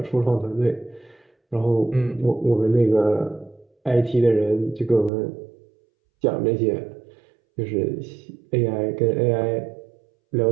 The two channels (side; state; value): left; drops out; at 5.1 s